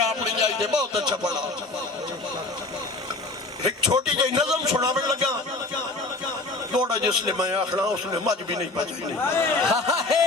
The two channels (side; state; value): right; quieter; 3.2 dB